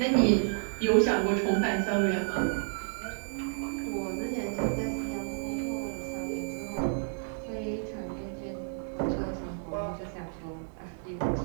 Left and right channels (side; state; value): left; silent; digital silence